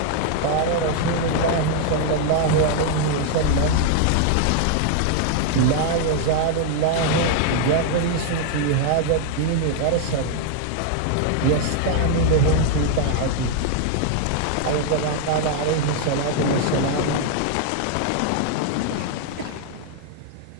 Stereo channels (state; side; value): different; both; correlation 0.00